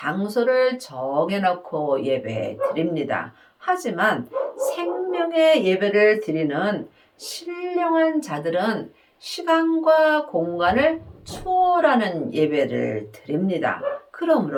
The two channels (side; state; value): both; identical; correlation 1.00